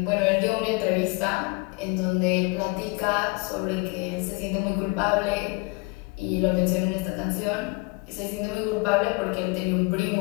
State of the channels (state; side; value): quieter; right; 27.1 dB